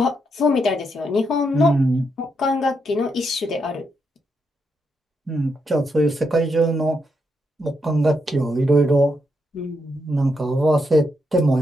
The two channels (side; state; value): both; normal; correlation 0.81